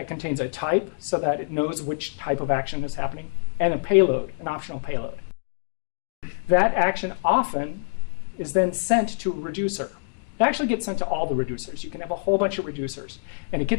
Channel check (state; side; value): silent; right; digital silence